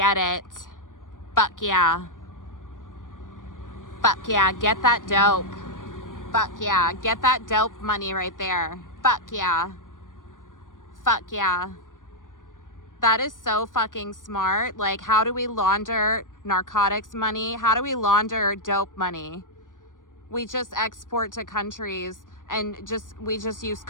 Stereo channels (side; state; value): right; late; 0.88 ms